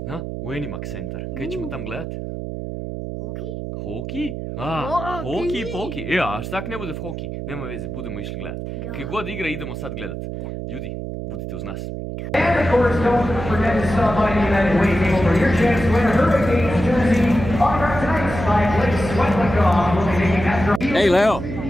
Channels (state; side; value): noise; right; hum, 6 dB below the sound